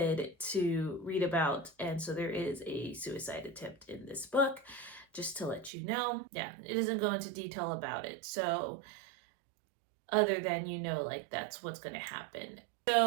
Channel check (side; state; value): left; drops out; at 5.7 s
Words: to read about, and so there is a suicide attempt in this book, just to let you know. Yeah, it doesn't go into detail about it, so other than, like, that's what's going to happen.